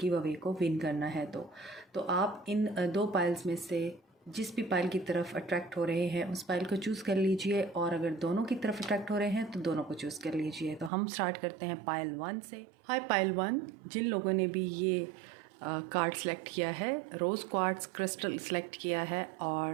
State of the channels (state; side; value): drops out; left; at 10.9 s